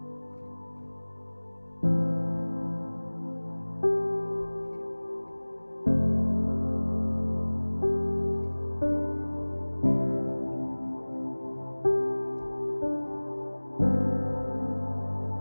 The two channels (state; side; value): inverted; both; correlation -1.00